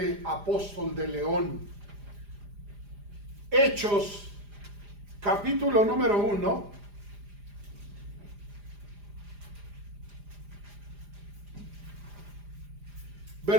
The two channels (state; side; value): late; left; 4.9 ms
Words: apóstol de León. Hechos, capítulo número 1.